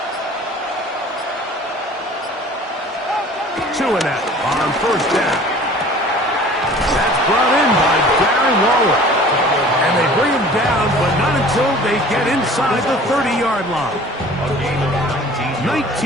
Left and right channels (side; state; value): both; normal; correlation 0.47